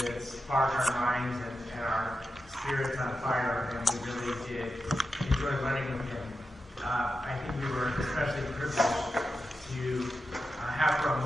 spark our minds and our spirits on fire, and we really did enjoy learning with him. I think we were especially privileged to have for a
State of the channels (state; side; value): normal; both; correlation 0.90